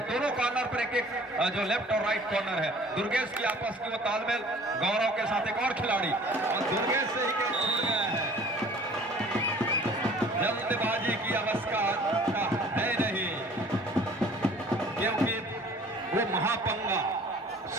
दोनों कॉर्नर पर एक जो लेफ्ट और राइट कॉर्नर है दुर्गेश की आपस की वो तालमेल। गौरव के साथ एक और खिलाड़ी और दुर्गेश से ही कैच छूट गया है। जल्दबाजी की अवस्था है नहीं क्योंकि वो महापंगा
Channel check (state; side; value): normal; both; correlation 0.50